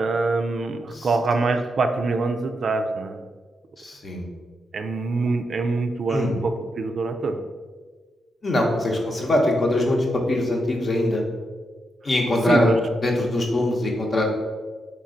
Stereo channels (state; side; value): normal; both; correlation 0.83